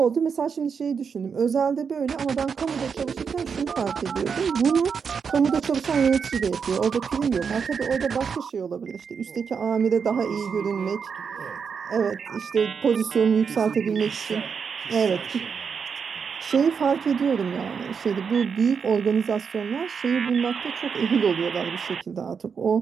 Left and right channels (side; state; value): left; quieter; 6.2 dB